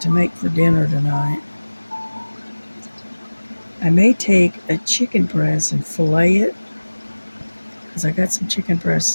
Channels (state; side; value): inverted; both; correlation -1.00